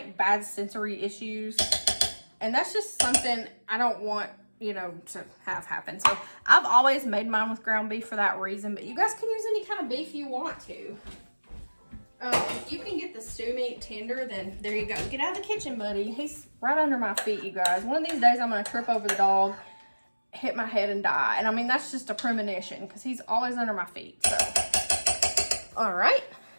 bad sensory issues, and that's just something I don't want, you know, to have happen. So I've always made mine with ground beef for that reason, but you guys can use any kind of beef you want to. If you can get the stew meat tender, then there you go. Get out of the kitchen, buddy. He's right under my feet, you guys. One of these days I'm going to trip over the dog, hit my head, and die. And I mean, that's just a premonition because he's always under my feet. So, all right.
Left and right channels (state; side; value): inverted; both; correlation -1.00